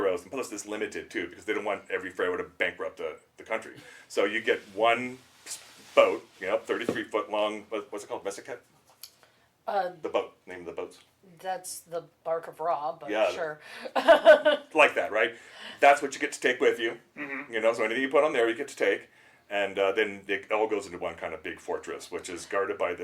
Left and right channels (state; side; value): identical; both; correlation 1.00